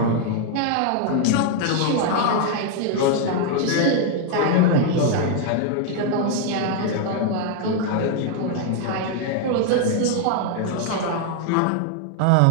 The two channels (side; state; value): both; different; correlation 0.00